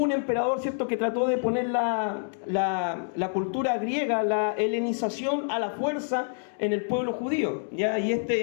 un emperador, ¿cierto?, que trató de poner la cultura griega, la helenización a la fuerza en el pueblo judío, ¿ya? Y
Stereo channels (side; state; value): right; silent; digital silence